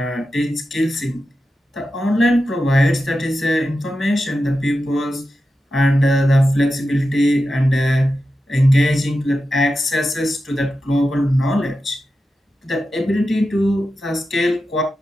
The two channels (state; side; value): normal; both; correlation 0.91